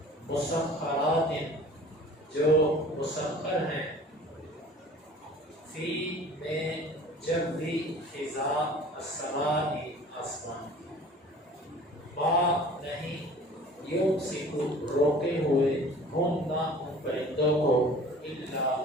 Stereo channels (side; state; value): both; normal; correlation 0.46